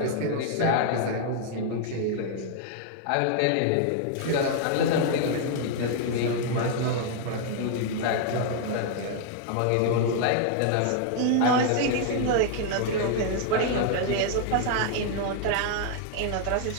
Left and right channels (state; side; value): different; both; correlation 0.00